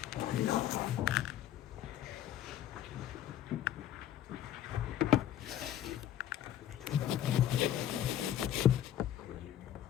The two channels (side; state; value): right; quieter; 11.3 dB